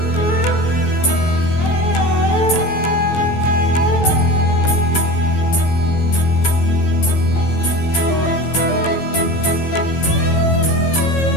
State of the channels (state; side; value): late; right; 12 ms